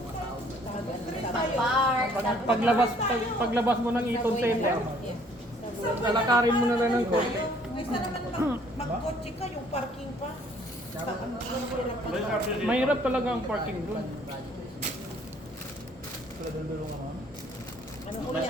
park. Paglabas mo ng Eaton Center, Yeah. lalakarin mo na lang ng konti. Kaysa naman mag-kotse ka, yung parking pa. Mahirap talaga ang parking doon.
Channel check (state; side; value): normal; both; correlation 0.60